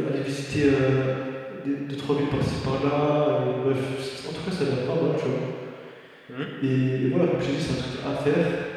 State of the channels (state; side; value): identical; both; correlation 1.00